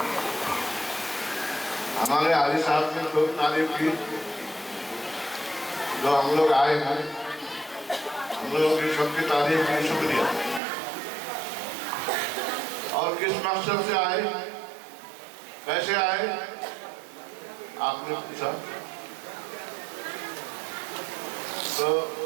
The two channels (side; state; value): left; drops out; at 10.6 s